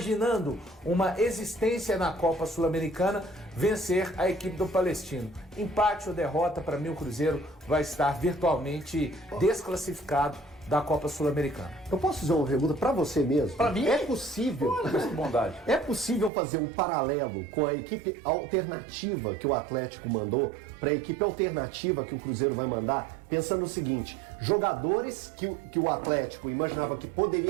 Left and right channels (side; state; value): left; drops out; at 16.3 s